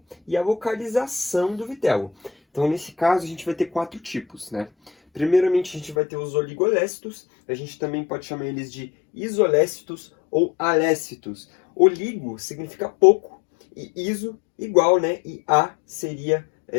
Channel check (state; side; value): drops out; right; at 6.0 s